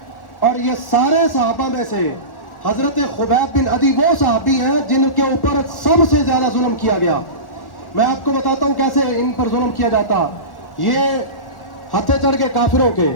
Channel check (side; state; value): right; late; 1.4 ms